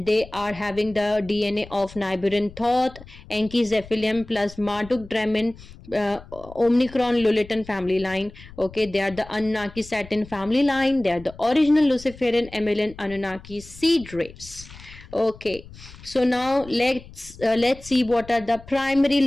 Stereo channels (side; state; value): left; noise; rumble, 19 dB below the sound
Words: they are having the DNA of Nibiruian Thoth, Enki Zephylim plus Marduk Dramin, Omicron Lulatin family line. Okay, they are the Anunnaki Saturn family line. They are the original Luciferian Amelian Anunnaki seed race. Okay, so now let's see what are the primary